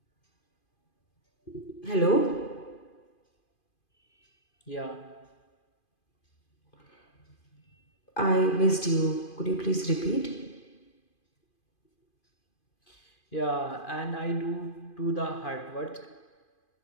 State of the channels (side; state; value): right; late; 2.5 ms